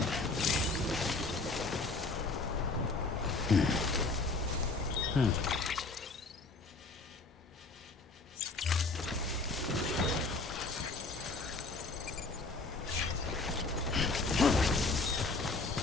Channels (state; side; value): quieter; right; 3.5 dB